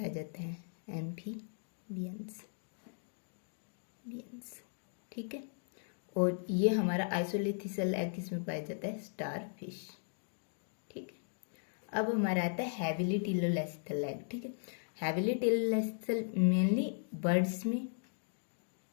जाता है, एम्फीबियंस। ठीक है, और ये हमारा आइसोलिथिसल एग किसमें पाया जाता है, स्टार फिश। ठीक है, अब हमारा आता है हैविली टिलोलेस्थल एग। ठीक है, हैविली टिलोलेस्थल मेनली बर्ड्स में,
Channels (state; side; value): silent; right; digital silence